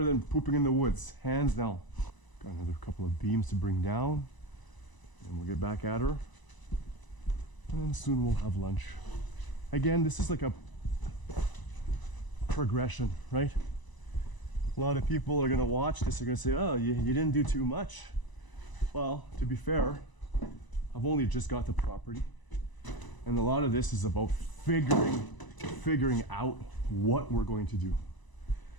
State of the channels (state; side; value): late; right; 1.0 ms